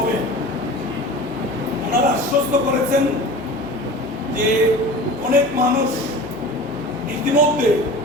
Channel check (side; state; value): left; noise; hum, 20 dB below the sound